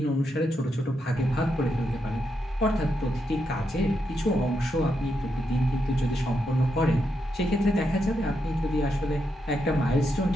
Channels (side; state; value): both; normal; correlation 0.82